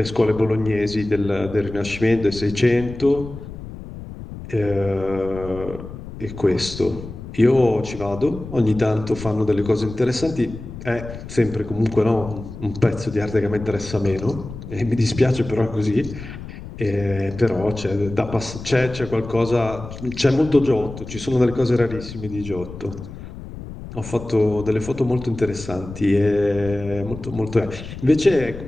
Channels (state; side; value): noise; left; rumble, 12 dB below the sound